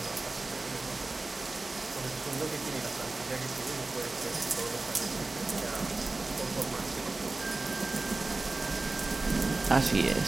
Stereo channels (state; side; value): quieter; left; 3.3 dB